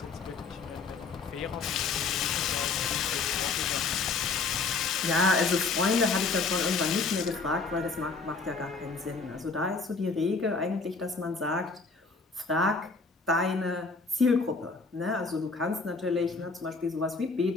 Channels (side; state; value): right; quieter; 4.3 dB